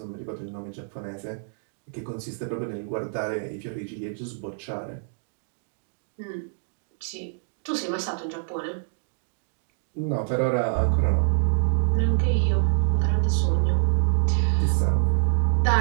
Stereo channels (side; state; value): left; silent; digital silence